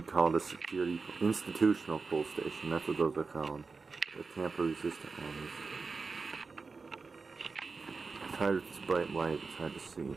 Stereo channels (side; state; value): left; quieter; 4.4 dB